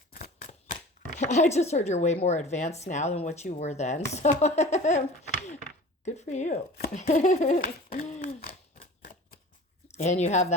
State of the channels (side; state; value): both; normal; correlation 0.40